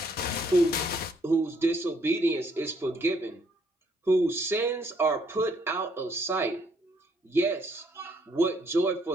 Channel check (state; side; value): normal; both; correlation 0.68